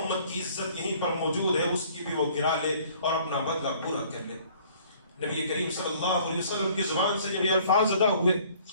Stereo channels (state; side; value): inverted; both; correlation -0.56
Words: کی عزت یہیں پر موجود ہے، اس کی بھی وہ گرا لے اور اپنا بدلہ پورا کر لے۔ نبی کریم صلی اللہ علیہ وسلم کی زبان سے جب یہ الفاظ ادا ہوئے،